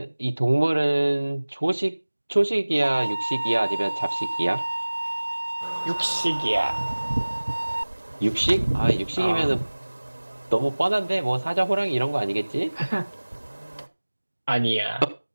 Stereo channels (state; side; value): inverted; both; correlation -1.00